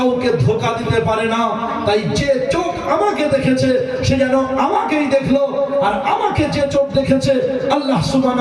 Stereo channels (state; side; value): identical; both; correlation 1.00